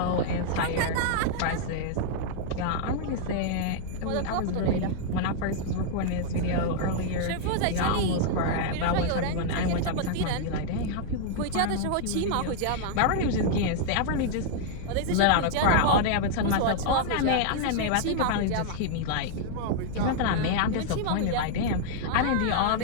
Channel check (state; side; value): different; both; correlation -0.01